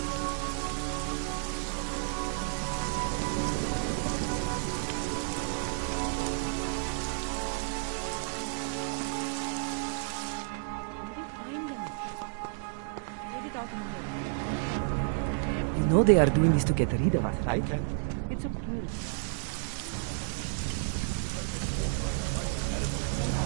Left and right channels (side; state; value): left; silent; digital silence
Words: Just wait it out in here. Then in the morning... You know they are doing this to get rid of us, right? I can't believe I lost...